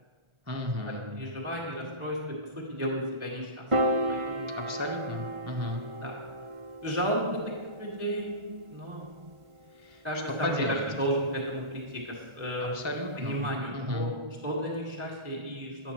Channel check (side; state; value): left; late; 1.4 ms